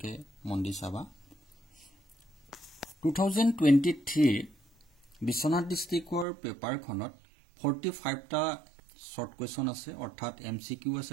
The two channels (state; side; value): drops out; left; at 6.2 s